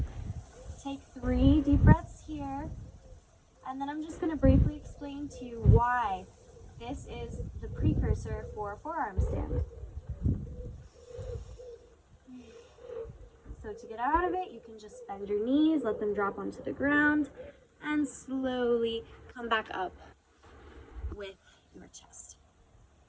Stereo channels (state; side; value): identical; both; correlation 1.00